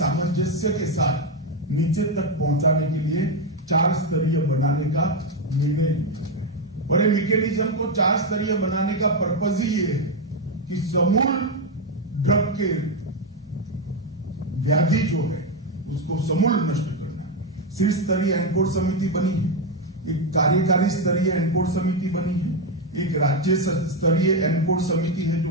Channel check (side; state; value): both; normal; correlation 0.06